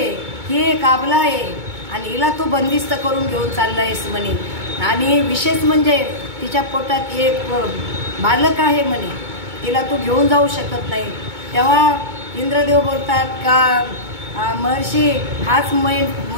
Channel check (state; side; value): late; left; 2.2 ms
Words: ही एक आबला आहे आणि हिला तू बंदिस्त करून घेऊन चालला आहेस म्हणे. आणि विशेष म्हणजे तिच्या पोटात एक बालक आहे म्हणे, तिला तू घेऊन जाऊ शकत नाही. तेव्हा इंद्रदेव बोलतात का महर्षी हाच मेन